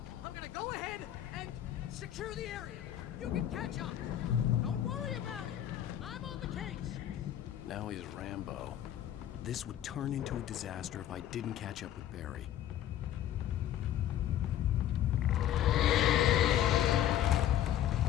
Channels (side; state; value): right; quieter; 11.6 dB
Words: I'm gonna go ahead and secure the area. You can catch up. Don't worry about it. I'm on the case. Now he's Rambo. This would turn into a disaster if I didn't catch up with Barry.